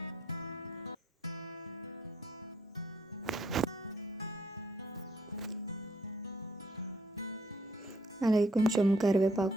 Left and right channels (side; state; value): both; normal; correlation 0.68